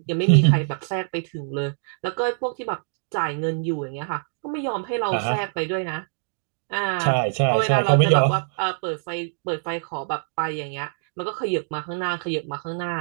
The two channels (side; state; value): left; silent; digital silence